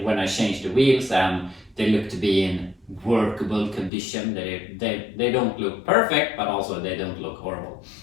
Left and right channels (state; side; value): drops out; right; at 3.9 s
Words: when I changed the wheels, and they look to be in workable condition. They don't look perfect, but also they don't look horrible.